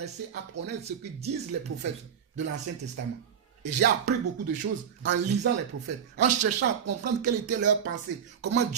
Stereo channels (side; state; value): left; quieter; 8.0 dB